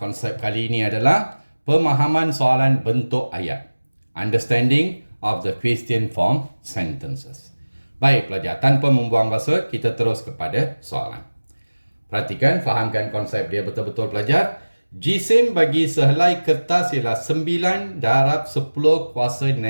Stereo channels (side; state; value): both; inverted; correlation -1.00